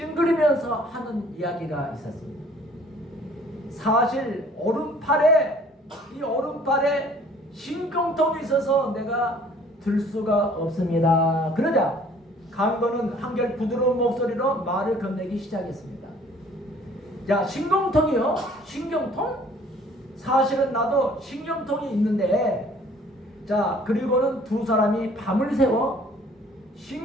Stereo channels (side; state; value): both; normal; correlation 0.55